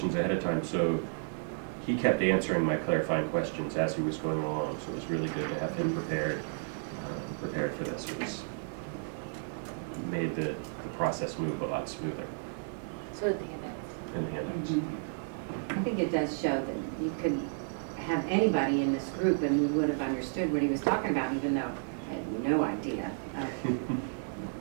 ahead of time, so he kept answering my clarifying questions as he was going along, so it was really good to have him prepared for this. It was made the process move a lot smoother So did the handouts. in the handouts. I think it does show that you could have anybody in this group and we would have understood what he was talking about, even though I had no idea.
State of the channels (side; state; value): left; silent; digital silence